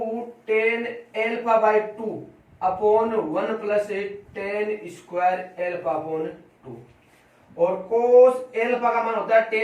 ten alpha by 2 upon 1 plus ten square alpha upon 2, और कोस एल्फा का मान होता है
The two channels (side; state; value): both; identical; correlation 1.00